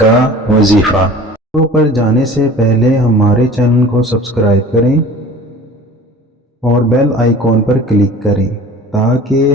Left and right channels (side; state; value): both; normal; correlation 0.43